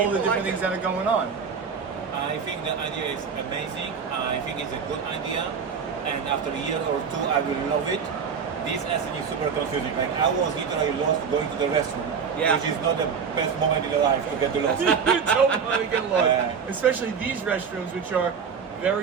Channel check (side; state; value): left; quieter; 6.3 dB